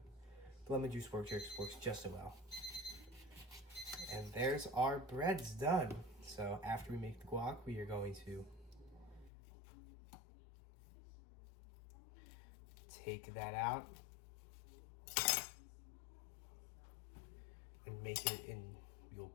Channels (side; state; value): right; drops out; at 9.3 s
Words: The lemon juice works just as well. And there's our breads done. So after we make the guac, we are going to take that out and make it in. You'll